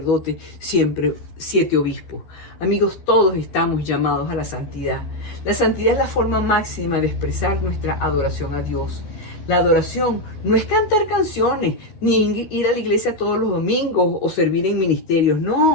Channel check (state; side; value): late; right; 12 ms